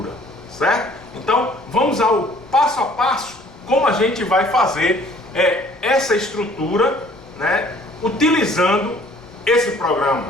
certo? Então vamos ao passo a passo como a gente vai fazer essa estrutura, né, utilizando esse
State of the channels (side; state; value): right; noise; rumble, 27 dB below the sound